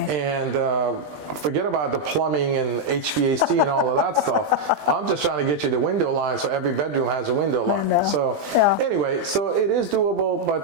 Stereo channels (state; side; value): late; left; 20 ms